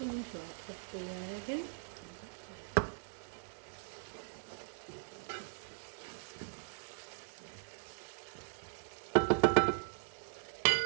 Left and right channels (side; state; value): left; silent; digital silence